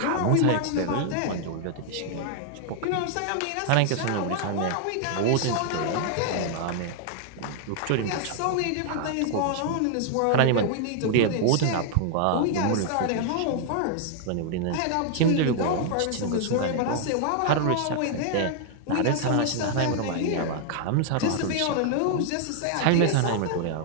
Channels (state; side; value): different; both; correlation 0.00